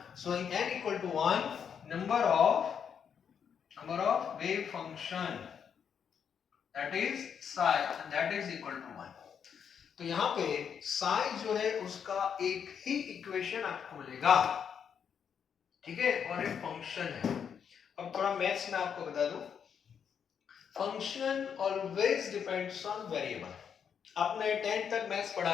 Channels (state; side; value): quieter; right; 7.5 dB